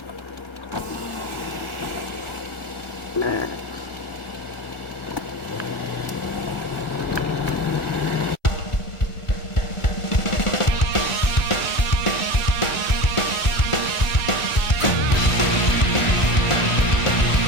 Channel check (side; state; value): right; late; 1.4 ms